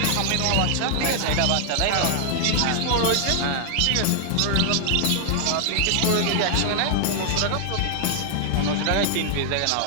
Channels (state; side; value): different; both; correlation 0.00